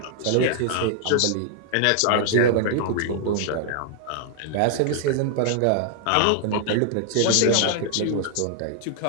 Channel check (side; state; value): both; different; correlation -0.01